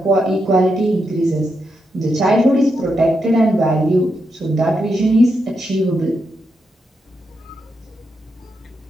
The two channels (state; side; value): normal; both; correlation 0.83